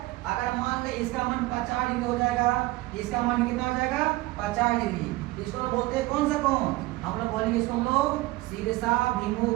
अगर मान ले इसका मान 50 डिग्री हो जाएगा, इसका मान कितना हो जाएगा, 50 डिग्री, इसको बोलते हैं कौन सा कोण? हम लोग बोलेंगे इसको हम लोग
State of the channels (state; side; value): quieter; left; 19.7 dB